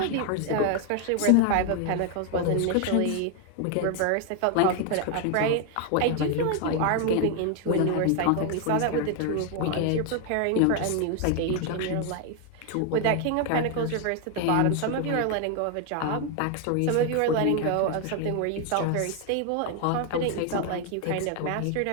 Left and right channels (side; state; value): both; different; correlation 0.01